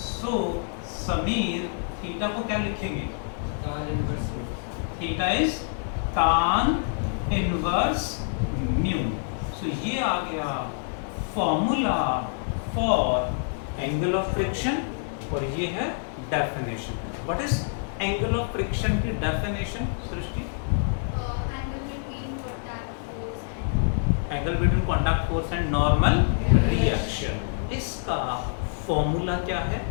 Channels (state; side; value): silent; right; 60 dB below the other